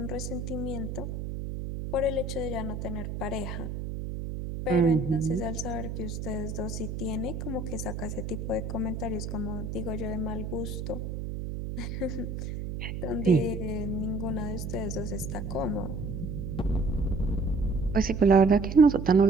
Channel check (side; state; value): right; noise; hum, 5 dB below the sound